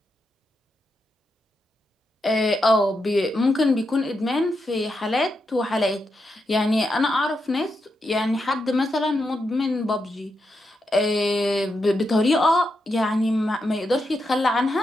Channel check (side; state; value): both; normal; correlation 0.84